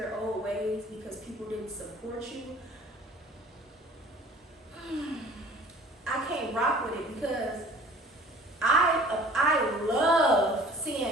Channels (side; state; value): both; normal; correlation 0.48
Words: old ways because people didn't support you, I can't rock with it because I love